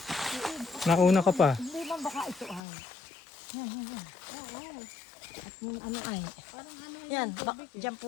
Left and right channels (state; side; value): drops out; right; at 2.6 s